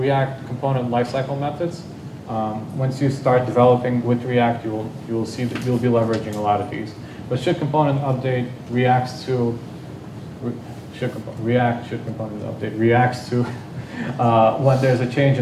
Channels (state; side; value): identical; both; correlation 1.00